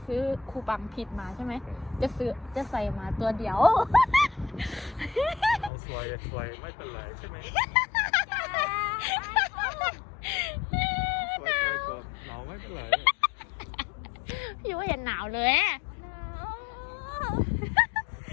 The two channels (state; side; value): drops out; right; at 5.7 s